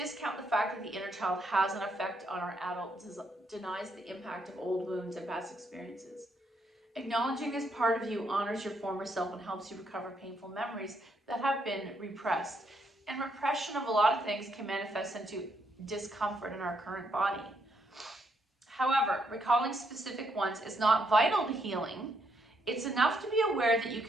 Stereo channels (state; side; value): normal; both; correlation 0.75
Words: the fact that the inner child has an effect on our adults denies the impact of old wounds and past experiences. Acknowledging this part of you honors your former self and helps you recover painful memories that have been repressed. And repression of a lot of things can manifest into discomfort in our current body. However, recalling specific ones is not vital to healing. It's enough to be aware that you